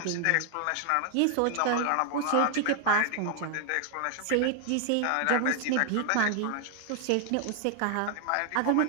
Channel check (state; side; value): different; both; correlation 0.00